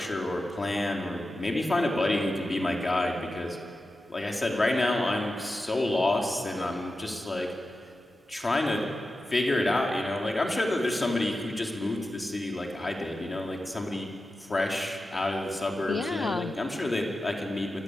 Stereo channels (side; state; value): both; normal; correlation 0.92